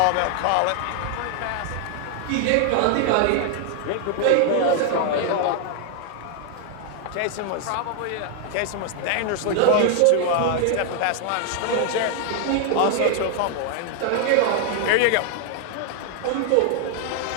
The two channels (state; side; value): different; both; correlation 0.00